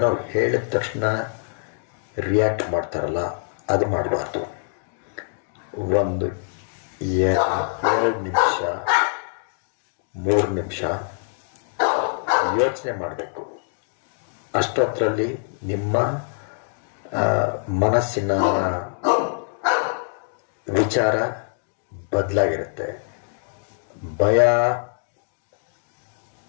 ಹೇಳಿದ ತಕ್ಷಣ ರಿಯಾಕ್ಟ್ ಮಾಡ್ತಾರಲ್ಲ, ಅದು ಮಾಡಬಾರ್ದು. ಒಂದು 2 ನಿಮಿಷ 3 ನಿಮಿಷ ಯೋಚನೆ ಮಾಡಬೇಕು. ಅಷ್ಟೊತ್ತರಲ್ಲಿ ನಿಮ್ಮ ಮನಸ್ಸಿನ ವಿಚಾರ ಬದಲಾಗಿರುತ್ತೆ. ಭಯ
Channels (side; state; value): right; silent; digital silence